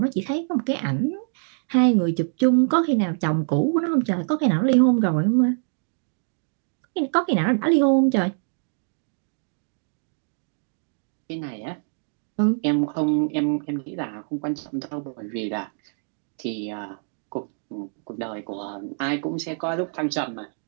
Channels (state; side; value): silent; left; 60 dB below the other